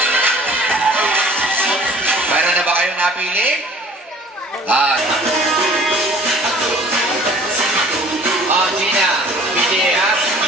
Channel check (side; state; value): both; normal; correlation 0.50